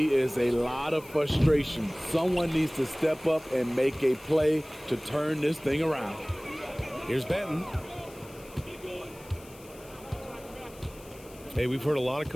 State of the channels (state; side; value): noise; left; hiss, 22 dB below the sound